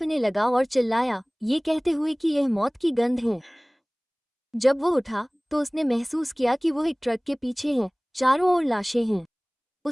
लगा और चिल्लाया, ये कहते हुए कि यह मौत की गंध है। जब वो उठा तो उसने महसूस किया कि वो एक ट्रक के पीछे है। चारों ओर लाशें हैं।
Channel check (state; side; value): identical; both; correlation 1.00